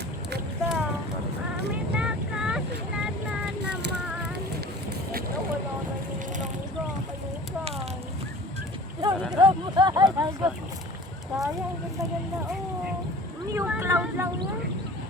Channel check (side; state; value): both; normal; correlation 0.43